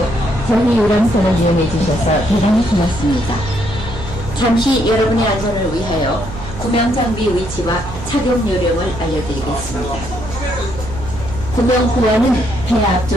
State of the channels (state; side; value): noise; right; hum, 11 dB below the sound